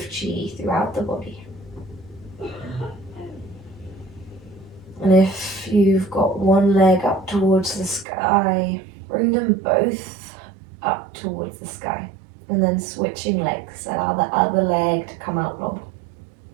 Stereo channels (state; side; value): drops out; left; at 8.1 s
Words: chi throughout the body. And if you've got one leg up towards the sky, bring them both up towards the sky, and then switching legs, allow the other leg to come out long.